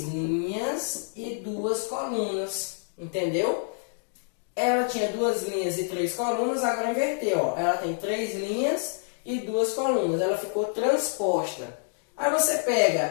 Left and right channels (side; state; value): right; silent; 60 dB below the other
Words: linhas e 2 colunas. Entendeu? Ela tinha 2 linhas e 3 colunas, agora inverteu. Ó. Ela tem 3 linhas e 2 colunas. Ela ficou transposta. Aí você